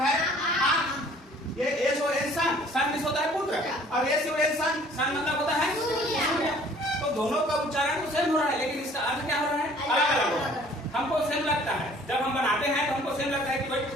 है आंख। ये एस और एन सन मींस होता है पुत्र, और एस और एन सन मतलब होता है सूर्य। तो दोनों का उच्चारण तो सेम हो रहा है, लेकिन इसका अर्थ क्या हो रहा है? अलग अलग हो रहा है। हमको सेम लगता है, जब हम बनाते हैं तो हमको सेम लगता है कि भाई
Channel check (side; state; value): both; normal; correlation 0.54